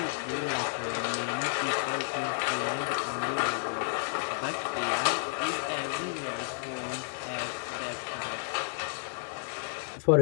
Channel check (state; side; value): silent; right; digital silence